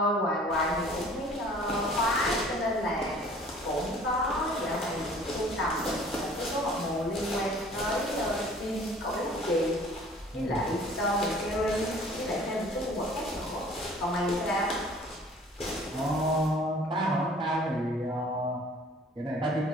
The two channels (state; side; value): normal; both; correlation 0.51